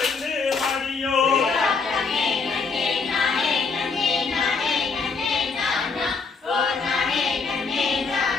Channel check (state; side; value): quieter; right; 4.7 dB